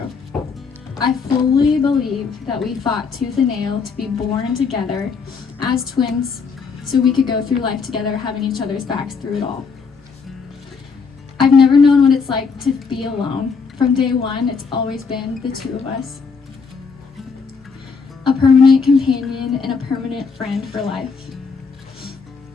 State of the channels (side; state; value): right; quieter; 5.3 dB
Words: I fully believe that we fought tooth and nail to be born together as twins so we could go through life together, having each other's backs through it all. I've never known what it's like to be alone. From day one, it's always been the two of us. A permanent companion and a permanent friend for life.